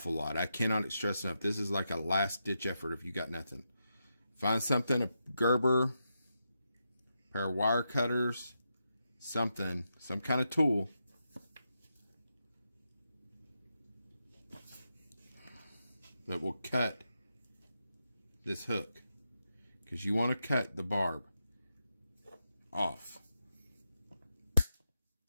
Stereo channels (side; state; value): both; inverted; correlation -0.86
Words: lot. I cannot stress enough. This is like a last ditch effort if you got nothing. Find something, a Gerber, pair of wire cutters, something, some kind of tool. That will cut this hook. Because you want to cut the barb off.